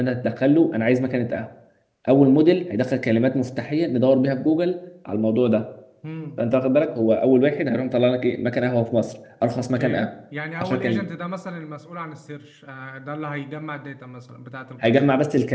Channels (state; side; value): identical; both; correlation 1.00